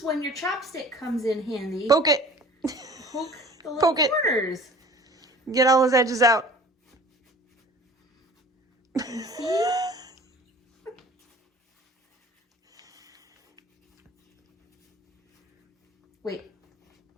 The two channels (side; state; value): both; normal; correlation 0.45